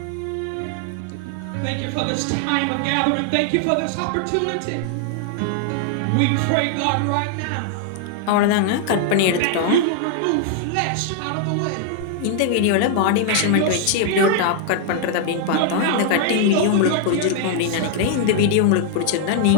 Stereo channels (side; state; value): both; different; correlation 0.00